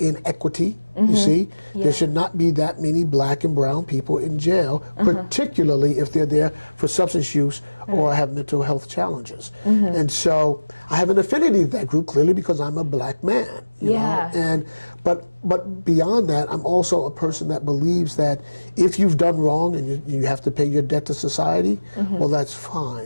You see, there should not be that many Black and brown people in jail, particularly if they're there for substance use or have mental health challenges. And so I have an affinity to that group clearly because I'm a Black man. You know? And but beyond that, I'm also a person that believes that if you've done wrong and you have to pay your debt to society, well, that's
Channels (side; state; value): both; inverted; correlation -1.00